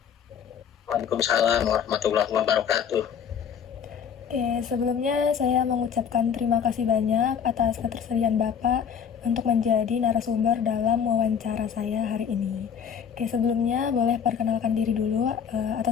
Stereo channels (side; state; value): right; quieter; 7.7 dB